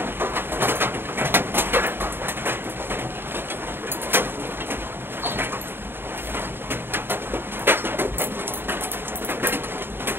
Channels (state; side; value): late; left; 0.10 ms